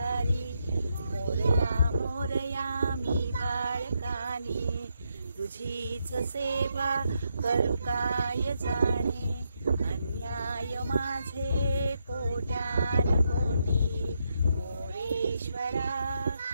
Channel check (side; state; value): both; inverted; correlation -0.81